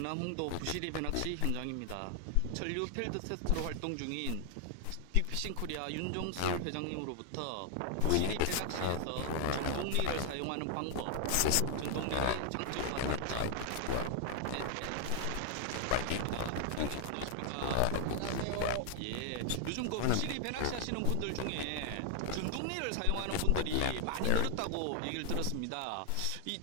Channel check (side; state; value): both; different; correlation 0.00